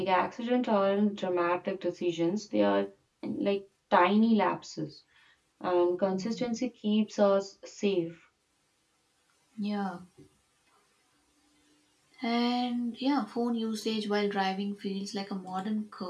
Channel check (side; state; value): both; identical; correlation 1.00